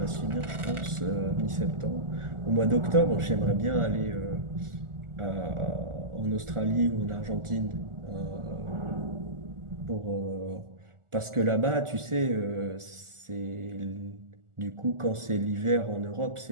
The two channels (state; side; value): late; left; 1.4 ms